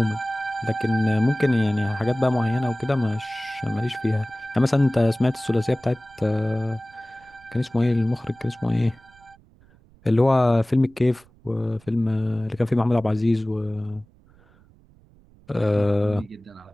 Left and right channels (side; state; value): right; noise; rumble, 29 dB below the sound